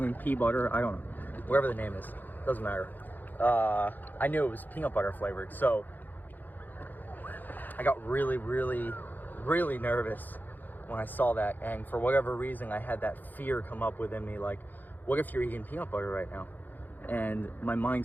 pea butter, I don't know, whatever the name is, doesn't matter. I knew it was peanut butter flavored, so I got really nervous when I saw that. And for whatever reason, I had that fear come up within me, like, what if you're eating peanut butter right now? And my mind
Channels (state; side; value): late; right; 0.086 ms